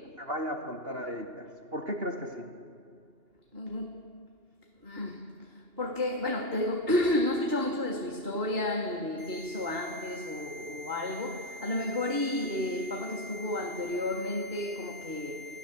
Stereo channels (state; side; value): late; left; 2.8 ms